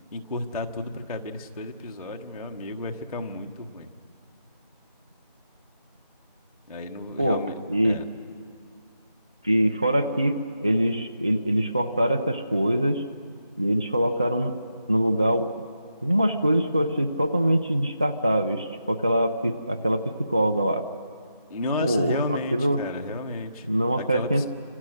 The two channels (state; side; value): inverted; both; correlation -0.83